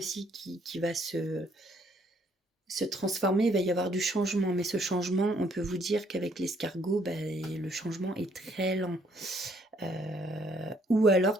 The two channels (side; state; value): both; normal; correlation 0.67